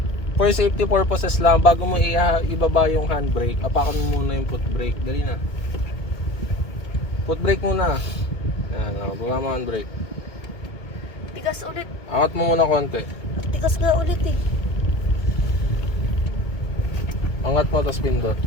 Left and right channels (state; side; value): late; right; 2.4 ms